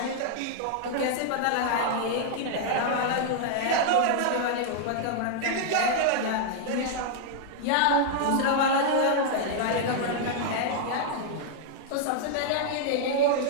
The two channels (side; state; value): both; different; correlation -0.01